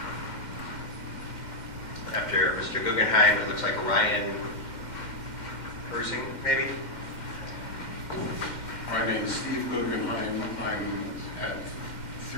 After Mr. Guggenheim, it looks like Ryan Persing, maybe? My name is Steve Guggenheim. I'm at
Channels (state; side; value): late; right; 2.1 ms